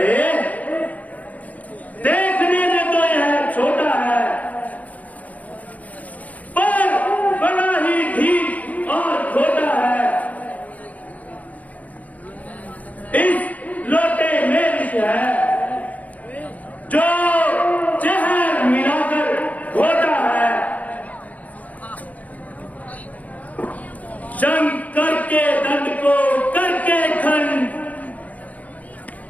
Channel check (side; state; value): right; late; 0.074 ms